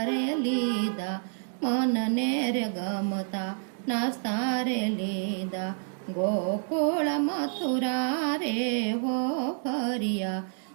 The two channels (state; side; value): silent; left; 59 dB below the other